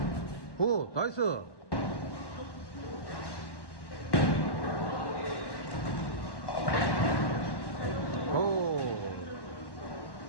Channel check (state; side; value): late; right; 1.1 ms